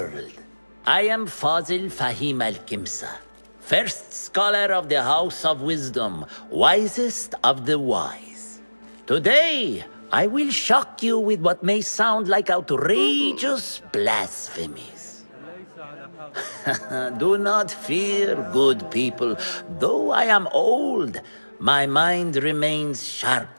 I am Fazil Fahim al-Kimsa, first scholar of the House of Wisdom, wisest of the wise. Today, I will shock you with what may sound like outrageous blasphemies. Do not fear, good people. Though I am old, my mind remains sharp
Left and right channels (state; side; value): inverted; both; correlation -1.00